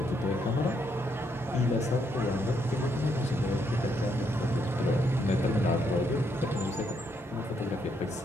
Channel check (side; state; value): both; normal; correlation 0.75